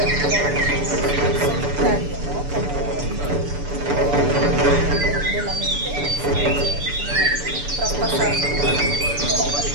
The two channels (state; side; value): late; left; 6.9 ms